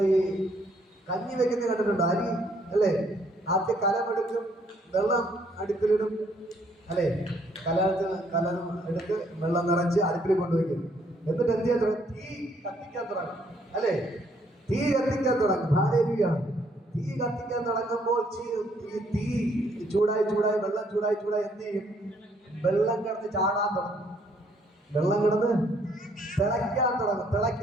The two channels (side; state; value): both; normal; correlation 0.67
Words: ഈ കഞ്ഞി വെക്കുന്ന കണ്ടിട്ടുണ്ടോ? അരി അല്ലേ? ആദ്യം കലമെടുക്കും, വെള്ളം അടുപ്പിലിടും അല്ലേ? കലം എടുത്ത് വെള്ളം നിറച്ച് അടുപ്പിൽ കൊണ്ടുവയ്ക്കും. എന്നിട്ട് എന്ത് ചെയ്യാൻ തുടങ്ങും? തീ കത്തിക്കാൻ തുടങ്ങും അല്ലേ? തീ കത്തിക്കാൻ തുടങ്ങും. ഹല്ലേലൂയ! തീ കത്തിക്കാൻ തുടങ്ങുമ്പോൾ തീ ചൂടായി വെള്ളം ചൂടായി എന്ത് ചെയ്യും? വെള്ളം കിടന്ന് ചാടാൻ തുടങ്ങും. വെള്ളം കിടന്ന് തിളയ്ക്കാൻ തുടങ്ങും.